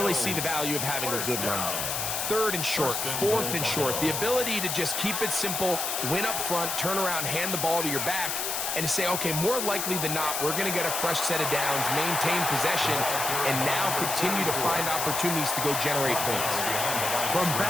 see the value of having a good run. 3rd and short, 4th and short. The ability to just keep it simple, win up front, turn around, hand the ball to your back, and to say, okay, more likely than not, we're going to get a fresh set of downs, maintain possession, and now continue to find opportunities to go generate points. From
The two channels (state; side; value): noise; left; hiss, 1 dB below the sound